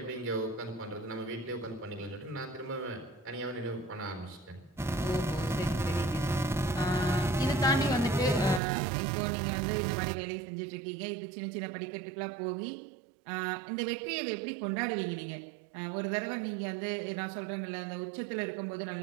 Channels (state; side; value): drops out; left; at 8.6 s